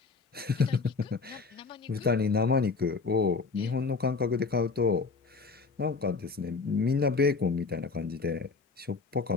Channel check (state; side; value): quieter; right; 4.6 dB